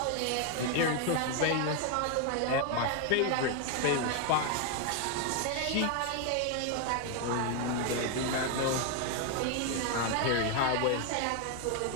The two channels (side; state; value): both; different; correlation 0.01